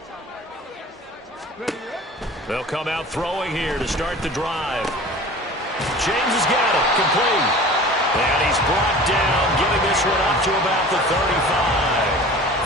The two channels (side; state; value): both; normal; correlation 0.41